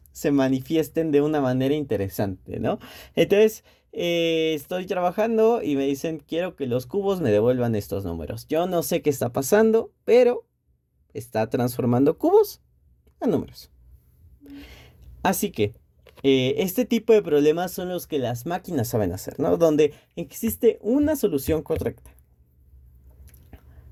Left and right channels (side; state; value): both; identical; correlation 1.00